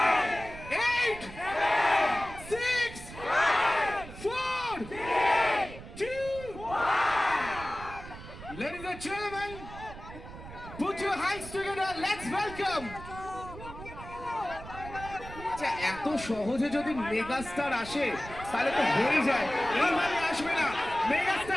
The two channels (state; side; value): noise; right; rumble, 14 dB below the sound